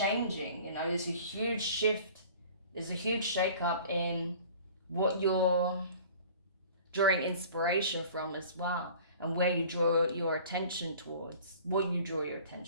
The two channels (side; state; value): both; inverted; correlation -0.46